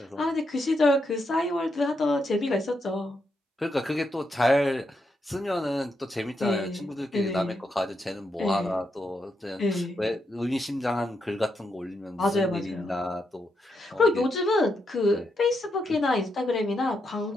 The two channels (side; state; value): both; normal; correlation 0.82